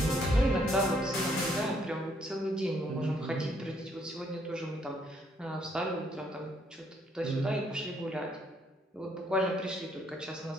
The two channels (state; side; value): normal; both; correlation 0.70